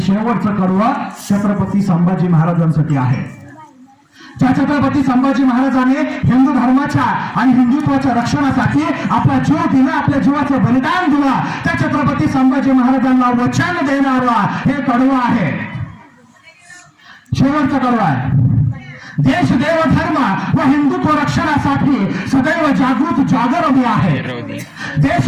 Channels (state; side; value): identical; both; correlation 1.00